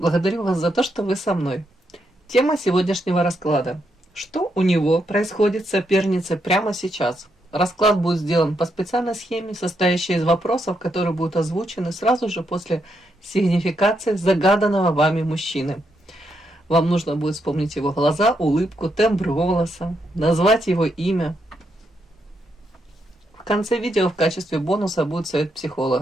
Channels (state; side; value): normal; both; correlation 0.80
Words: вас за то, что вы со мной. Тема сегодняшнего расклада. Что у него происходит с соперницей прямо сейчас? Расклад будет сделан по специальной схеме, состоящей из вопросов, которые будут озвучены сразу же после сигнификации загаданного вами мужчины. Вам нужно будет вспомнить его глаза, улыбку, тембр голоса, назвать его имя. В конце видео в качестве бонуса будет совет